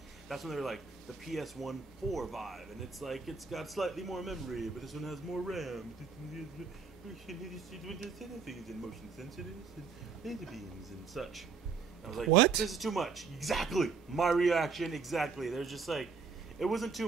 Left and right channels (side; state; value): left; quieter; 5.3 dB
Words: that's when they were like the PS1 4 vibe, and it's like it's got slightly more memory, but this one has more RAM. Things and motion sensors and laser beams and such. And I was like, what? This is too much. Exactly. My reaction. Exactly. There's just like, it wasn't too